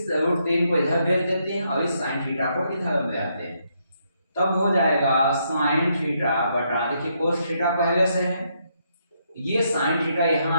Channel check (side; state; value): both; inverted; correlation -0.76